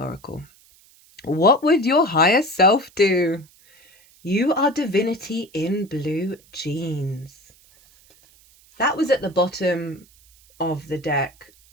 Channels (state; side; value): noise; right; hiss, 29 dB below the sound